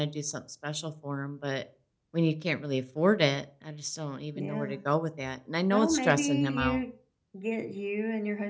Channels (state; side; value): identical; both; correlation 1.00